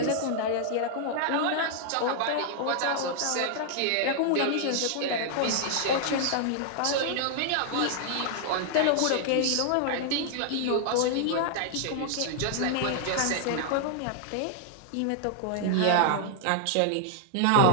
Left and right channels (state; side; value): different; both; correlation -0.01